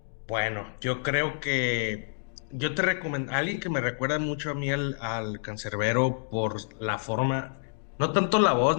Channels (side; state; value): right; silent; digital silence